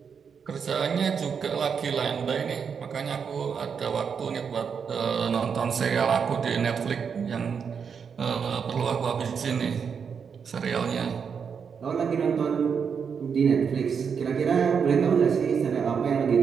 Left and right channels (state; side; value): quieter; left; 6.5 dB